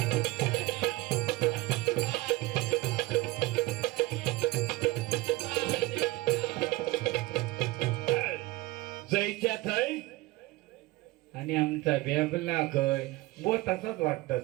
जयच्या थय आणि आमचा बेबला कय बो तसाच वाटतात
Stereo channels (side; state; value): left; quieter; 20.4 dB